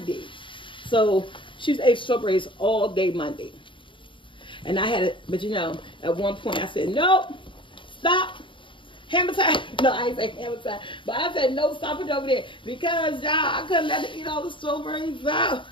So She's ate strawberries all day Monday. And I had it, but you know, at one point I said, nope, stop. Hammer time. No, I ain't say hammer time. But I said, no, stop it over there. Because, y'all, I couldn't let her eat all the strawberries out.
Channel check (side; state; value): right; late; 0.24 ms